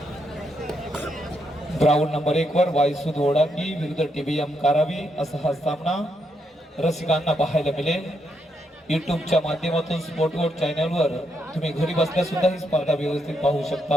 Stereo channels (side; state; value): both; normal; correlation 0.79